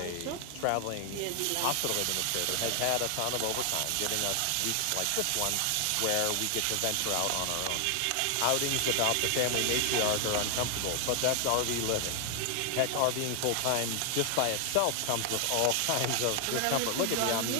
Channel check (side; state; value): both; different; correlation 0.00